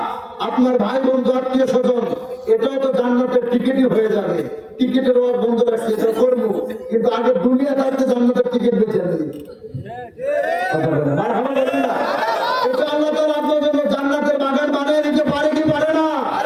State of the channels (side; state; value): both; identical; correlation 1.00